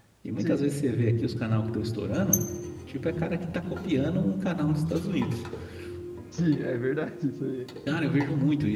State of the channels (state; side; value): identical; both; correlation 1.00